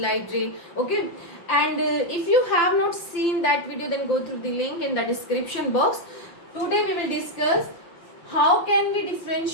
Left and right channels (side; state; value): right; late; 5.7 ms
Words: light ray, okay? And if you have not seen that video, then go through the link in the description box. Today we will discuss how can we